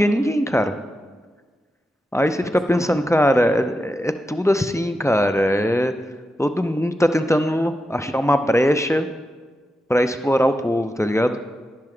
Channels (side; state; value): both; normal; correlation 0.88